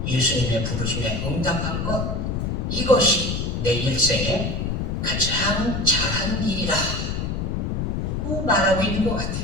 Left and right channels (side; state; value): left; noise; rumble, 1 dB below the sound